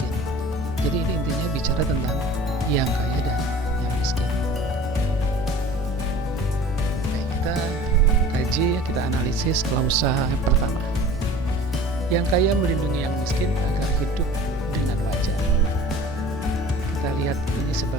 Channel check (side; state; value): both; normal; correlation 0.44